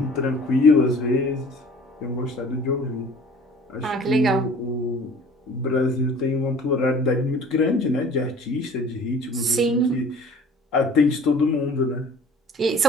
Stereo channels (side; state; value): both; normal; correlation 0.47